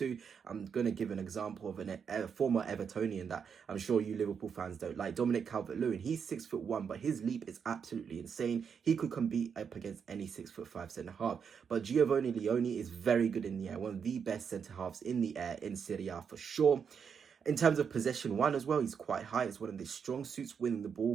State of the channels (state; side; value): quieter; left; 6.8 dB